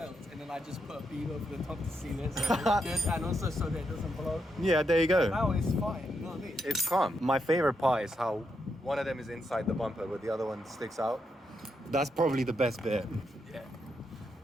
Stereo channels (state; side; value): normal; both; correlation 0.81